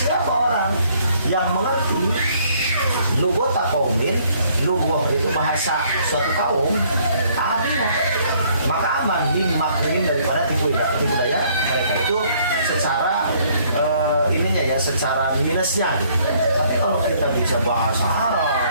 orang yang mengerti lughata qaumin, lughah itu bahasa suatu kaum, amina, maka aman min makrihim, daripada tipu daya mereka. Itu secara ininya ya, secara minusnya gitu. Tapi kalau kita bisa bahasa Arab,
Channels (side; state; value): both; inverted; correlation -0.63